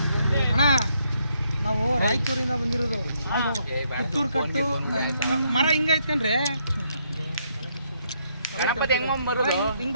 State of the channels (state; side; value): inverted; both; correlation -0.74